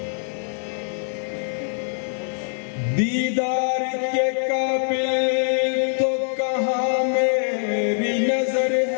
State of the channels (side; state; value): right; silent; 63 dB below the other